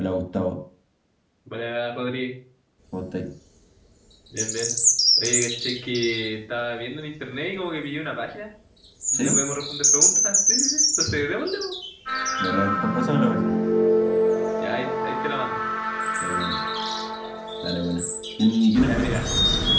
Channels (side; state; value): both; identical; correlation 1.00